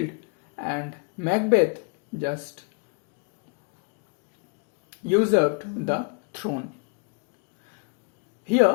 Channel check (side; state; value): right; quieter; 35.8 dB